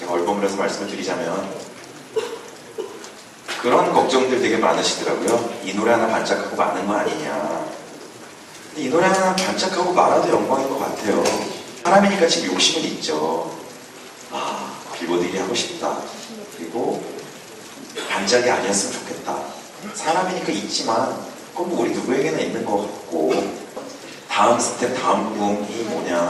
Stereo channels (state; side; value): identical; both; correlation 1.00